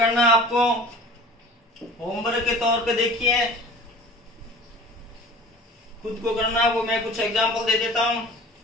है आपको, होमवर्क के तौर पे देखिए खुद को करना है, वो मैं कुछ एग्जांपल दे देता हूं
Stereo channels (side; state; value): both; normal; correlation 0.42